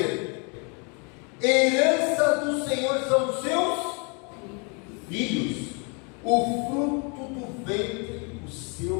herança do Senhor são os seus filhos, o fruto do ventre, o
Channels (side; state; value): right; quieter; 34.7 dB